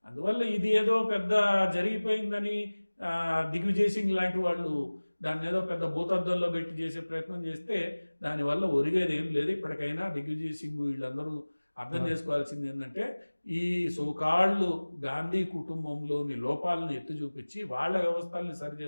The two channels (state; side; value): inverted; both; correlation -1.00